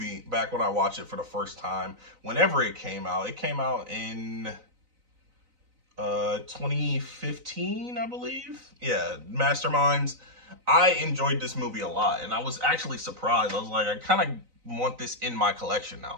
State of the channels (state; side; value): late; left; 3.9 ms